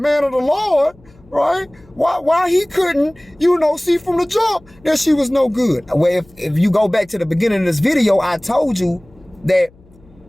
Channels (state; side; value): noise; left; hum, 28 dB below the sound